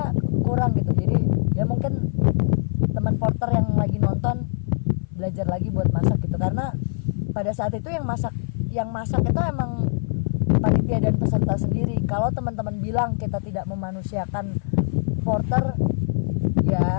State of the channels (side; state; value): right; silent; 57 dB below the other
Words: kurang gitu. Jadi ya mungkin teman porter yang lagi nonton belajar lagi buat masak gitu, karena pada saat itu yang masak itu emang panitia dan peserta sendiri. Kalau teman-teman bilang kita tidak memanusiakan porter,